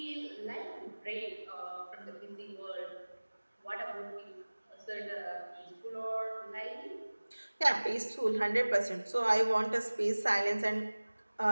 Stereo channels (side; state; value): both; inverted; correlation -1.00